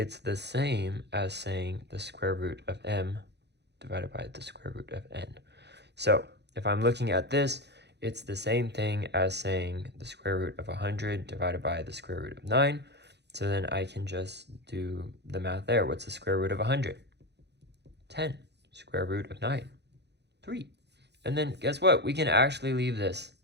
the same as saying the square root of m divided by the square root of n. So if I'm looking at this, it's the same thing as saying the square root of 100 divided by the square root of 9. So then I can just do the math there. What's the square root of 100? 10. Square root of 9? 3. And then guess what? We can actually leave this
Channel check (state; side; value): late; left; 0.50 ms